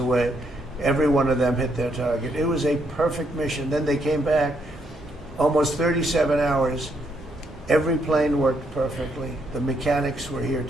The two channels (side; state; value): both; normal; correlation 0.75